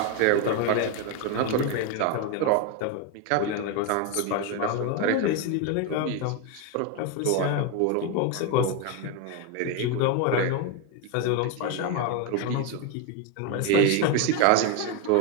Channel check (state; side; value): different; both; correlation 0.02